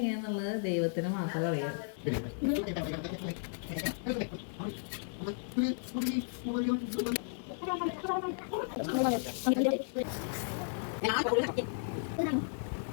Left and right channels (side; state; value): right; silent; digital silence